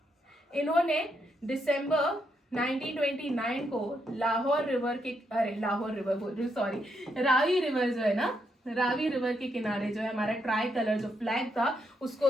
इन्होंने दिसंबर 1929 को लाहौर रिवर के, लाहौर रिवर बोल रही हूँ, सॉरी, रावी रिवर जो है ना, रावी रिवर के किनारे जो है हमारा ट्राई कलर जो फ्लैग था उसको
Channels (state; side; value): normal; both; correlation 0.78